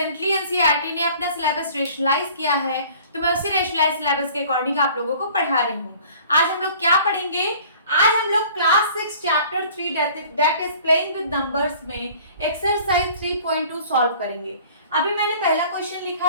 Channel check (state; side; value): inverted; both; correlation -0.50